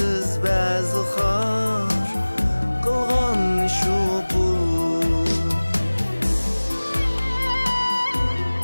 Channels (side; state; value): both; inverted; correlation -1.00